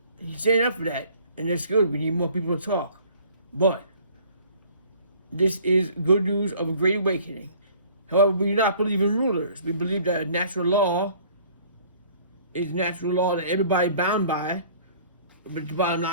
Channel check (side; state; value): both; inverted; correlation -0.53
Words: he's standing up for that, and that's good. We need more people to talk. But this is good news of a great awakening. However, we do not believe in rulers. We believe that a natural law is a natural law that everybody bound by. But the bottom